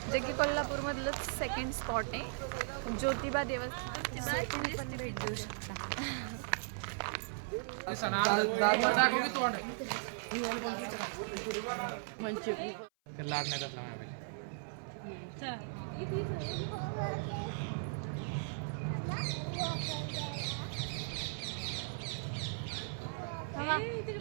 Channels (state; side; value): silent; left; 53 dB below the other